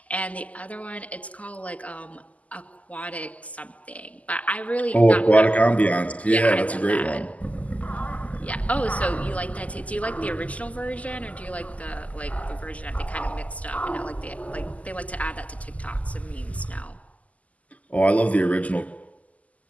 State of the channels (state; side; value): late; right; 0.072 ms